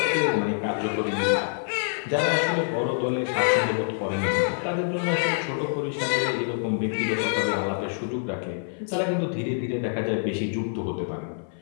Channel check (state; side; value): silent; right; 57 dB below the other